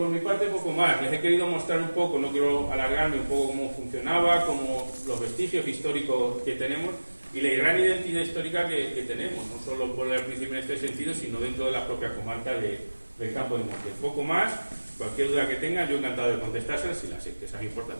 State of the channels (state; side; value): inverted; both; correlation -1.00